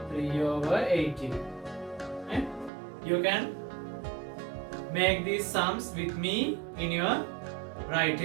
3 over 18. Right? You can make these sums with me in your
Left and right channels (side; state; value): left; drops out; at 2.7 s